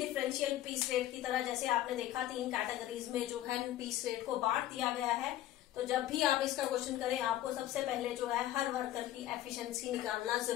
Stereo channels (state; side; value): quieter; right; 13.6 dB